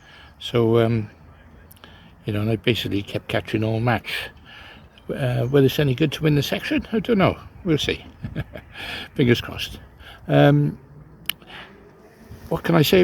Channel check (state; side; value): identical; both; correlation 1.00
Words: So you know, and I basically kept catching all match. Whether it's any good to win the section, I don't know. We'll see. Fingers crossed. What can I say